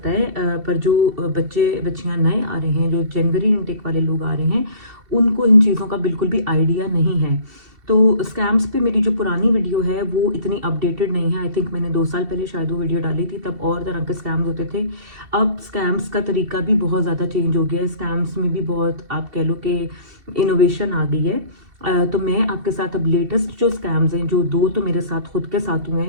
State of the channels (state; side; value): late; left; 2.7 ms